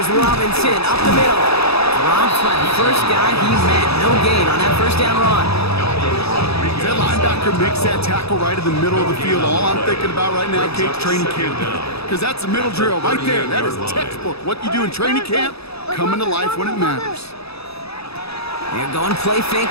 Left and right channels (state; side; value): late; right; 0.78 ms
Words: Robinson up the middle. Rob's by the first guy he met. No gain on that first down run. That linebacker makes that tackle right in the middle of the field. All I'm thinking about right now, Kate, training camp. Because that's the middle drill right there. That is textbook. What you do in training camp, coming to life when it matters. They're going play